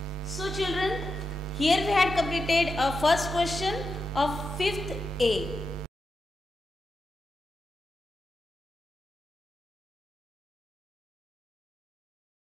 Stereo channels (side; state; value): both; normal; correlation 0.87